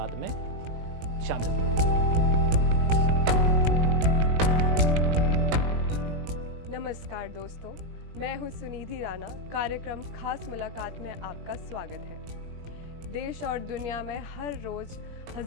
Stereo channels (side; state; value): left; late; 19 ms